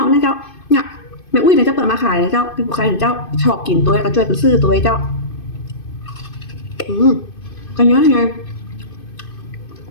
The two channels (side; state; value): right; late; 2.5 ms